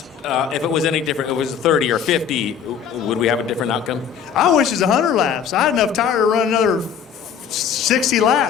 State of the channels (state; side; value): quieter; right; 7.7 dB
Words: If it was any different, it was 30 or 50, would we have a different outcome? I wish it was 100 laps. I had enough tire to run another 60